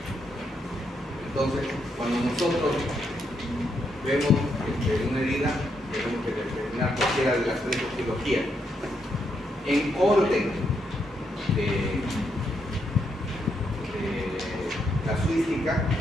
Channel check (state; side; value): normal; both; correlation 0.79